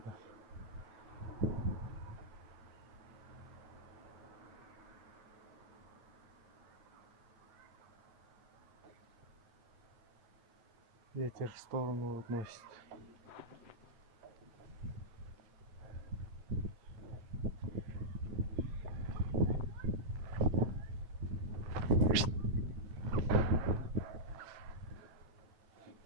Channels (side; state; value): left; late; 8.6 ms